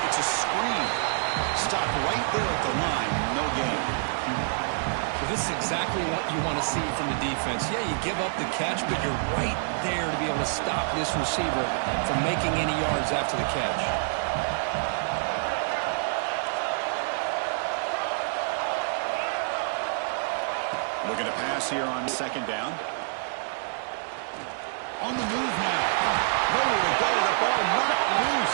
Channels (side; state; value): left; silent; digital silence